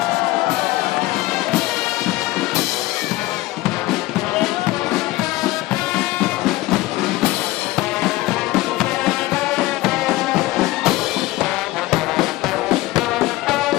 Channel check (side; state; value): right; quieter; 18.6 dB